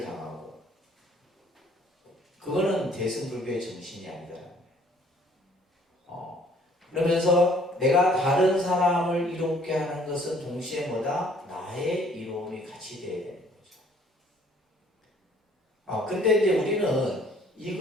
당하고 그거는 대승불교의 정신이 아니더라고요. 그러면서 내가 다른 사람을 이롭게 하는 것은 동시에 뭐다? 나의 이로움이 같이 돼야 되는 거죠. 근데 이제 우리는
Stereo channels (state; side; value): normal; both; correlation 0.59